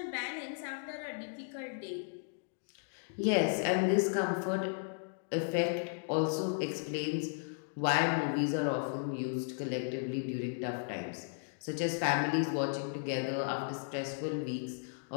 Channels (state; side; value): silent; right; digital silence